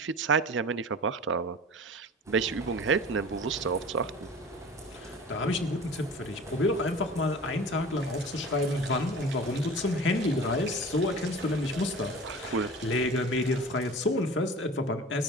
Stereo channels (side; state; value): both; normal; correlation 0.39